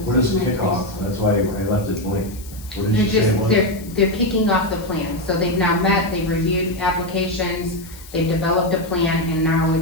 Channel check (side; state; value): left; noise; hiss, 19 dB below the sound